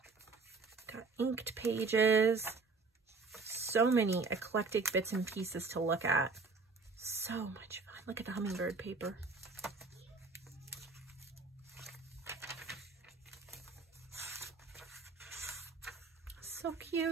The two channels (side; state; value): left; quieter; 4.3 dB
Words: Got inked pages. So many eclectic bits and pieces to look at. So much fun. Look at the hummingbird paper. So